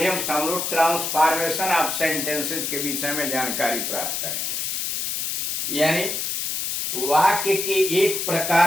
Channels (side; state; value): left; noise; hiss, 1 dB below the sound